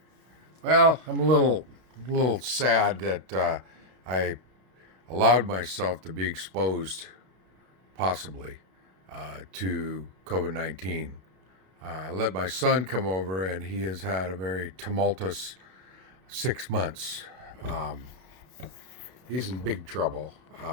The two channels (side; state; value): left; late; 32 ms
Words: Well, I'm a little sad that I allowed myself to be exposed, possibly, to COVID-19. I let my son come over, and he has had a very tumultuous 6 months. Um, he's in big trouble